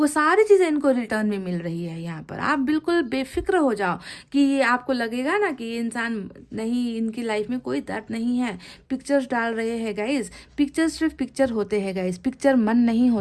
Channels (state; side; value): identical; both; correlation 1.00